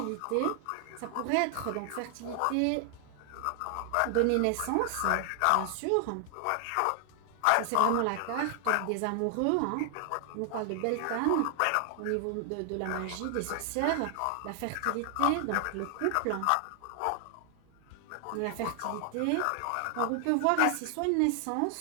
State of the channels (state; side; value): different; both; correlation 0.00